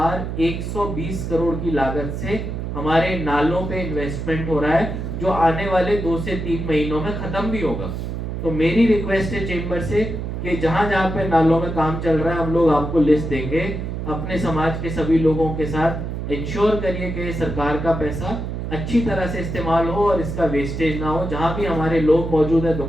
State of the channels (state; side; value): noise; right; hum, 5 dB below the sound